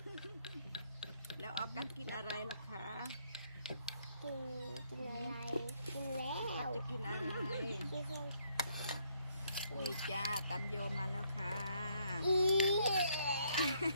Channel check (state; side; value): inverted; both; correlation -0.70